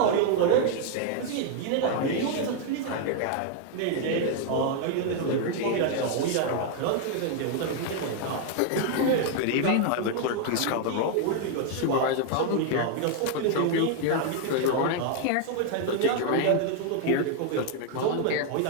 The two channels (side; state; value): both; different; correlation 0.00